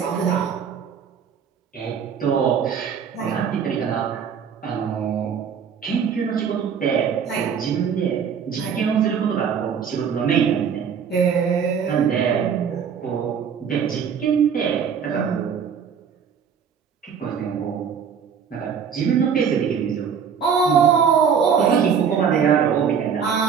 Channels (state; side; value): quieter; left; 7.1 dB